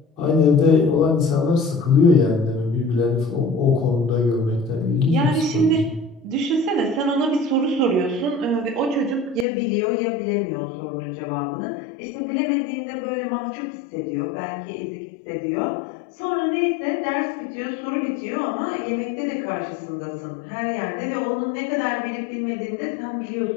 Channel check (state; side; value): drops out; right; at 9.5 s